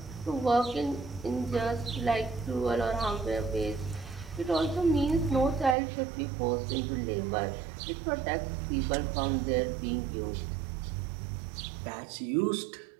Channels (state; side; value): drops out; left; at 5.8 s